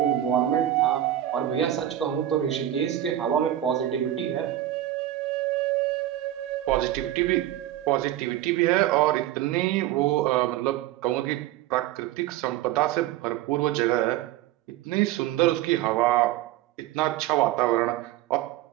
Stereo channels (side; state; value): left; quieter; 13.1 dB